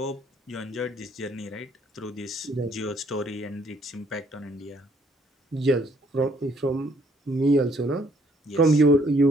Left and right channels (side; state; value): both; normal; correlation 0.65